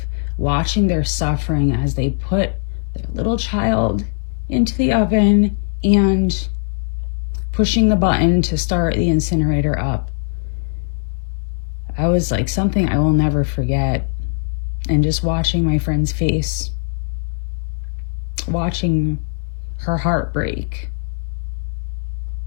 watching their suffering as they put their little child into the oven and pushing the button to start the incinerator up. I was something I will never forget. And just watching my friend's face, watching her heart break.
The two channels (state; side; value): silent; right; digital silence